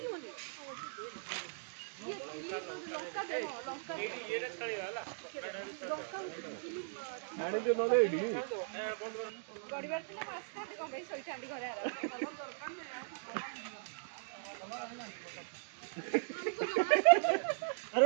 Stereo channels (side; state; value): left; silent; digital silence